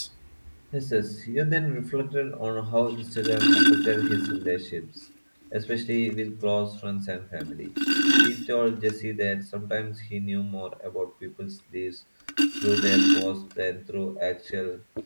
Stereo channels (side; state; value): both; inverted; correlation -1.00